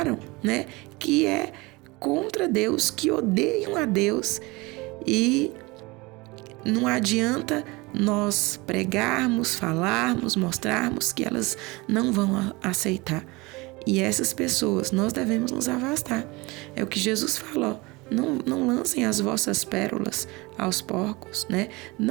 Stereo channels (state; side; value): quieter; left; 23.9 dB